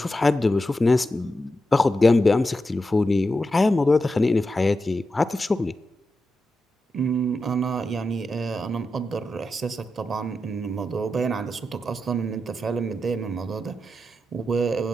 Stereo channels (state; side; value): normal; both; correlation 0.88